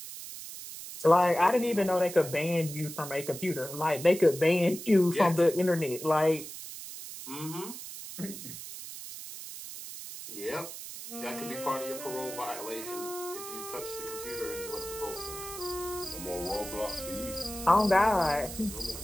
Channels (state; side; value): noise; right; hiss, 11 dB below the sound